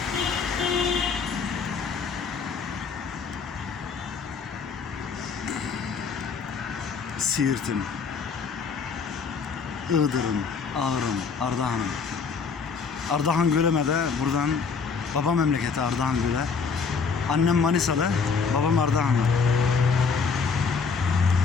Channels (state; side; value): quieter; right; 5.3 dB